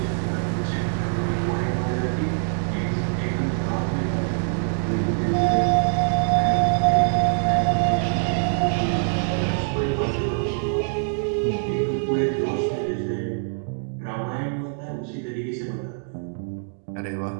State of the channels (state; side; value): silent; left; digital silence